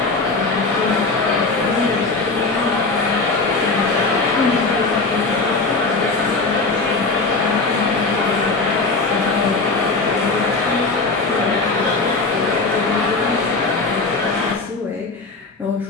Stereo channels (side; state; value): right; quieter; 3.7 dB